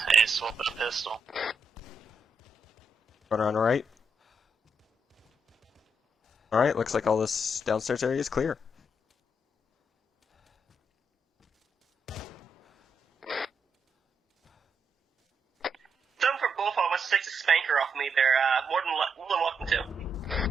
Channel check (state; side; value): normal; both; correlation 0.80